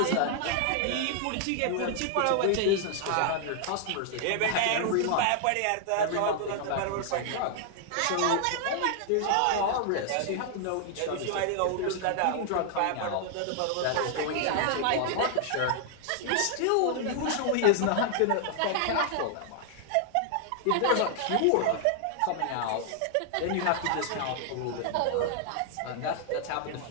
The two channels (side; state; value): both; different; correlation 0.00